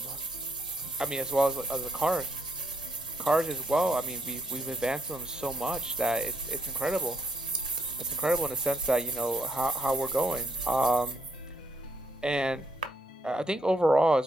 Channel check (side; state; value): both; normal; correlation 0.75